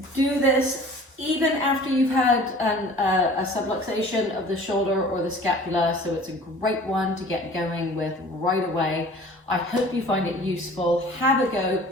do this even after you've had a subluxation of the shoulder or the scapula, so it's a great one to get going with right away. I hope you find it useful. Have a go,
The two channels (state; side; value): normal; both; correlation 0.46